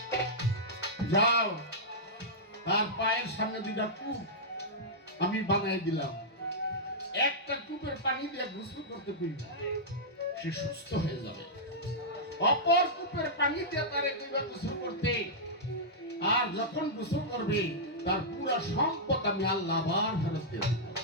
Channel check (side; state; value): both; normal; correlation -0.10